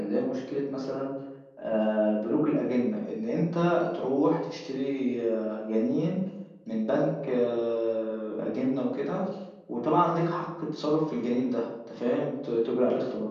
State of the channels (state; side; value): identical; both; correlation 1.00